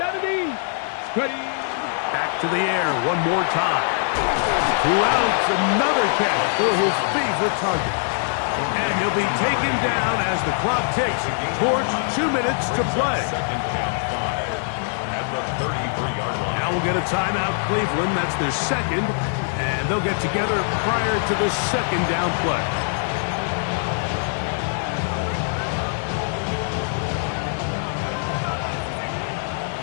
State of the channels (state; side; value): silent; right; 64 dB below the other